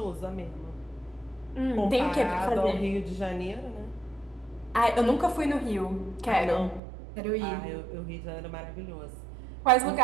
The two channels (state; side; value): drops out; left; at 6.8 s